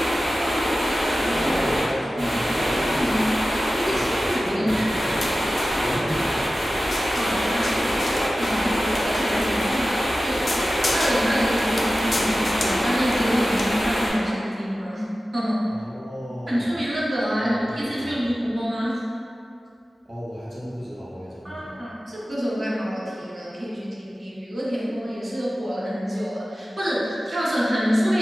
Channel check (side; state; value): both; normal; correlation 0.95